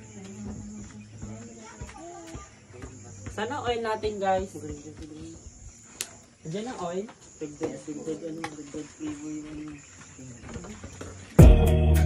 Sana oil natin, guys. Diyan ang oil. Dagdag flavor yung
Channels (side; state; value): both; identical; correlation 1.00